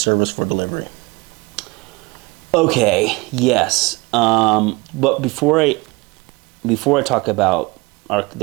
for delivery? Okay, yes. But before I talk about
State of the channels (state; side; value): quieter; left; 24.6 dB